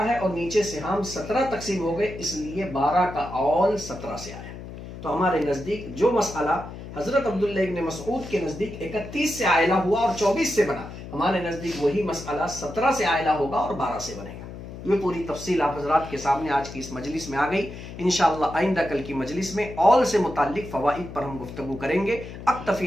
ہے اور نیچے سے ہم 17 تقسیم ہو گئے، اس لیے 12 کا اول 17 سے آیا۔ تو ہمارے نزدیک جو مسئلہ حضرت عبداللہ ابن مسعود کے نزدیک 31 سے عائلہ ہوا اور 24 سے بنا، ہمارے نزدیک وہی مسئلہ 17 سے عائلہ ہوگا اور 12 سے بنے گا۔ یہ پوری تفصیل آپ حضرات کے سامنے آج کی اس مجلس میں آ گئی۔ انشاءاللہ آئندہ کل کی مجلس میں اول سے متعلق فوائد پر ہم گفتگو کریں گے۔ اکتفی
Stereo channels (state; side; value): noise; left; hum, 12 dB below the sound